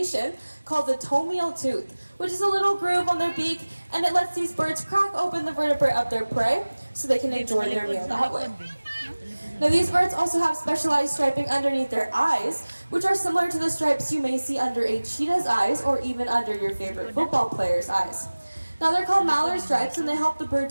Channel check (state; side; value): inverted; both; correlation -1.00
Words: called the tomial tooth, which is a little groove on their beak, and it lets these birds crack open the vertebrae of their prey so they can enjoy their meal that way. Now these birds also have specialized striping underneath their eyes, which are similar to the stripes you may see under a cheetah's eyes or even under your favorite football player's eyes. Now they're called mallard stripes, and they help the bird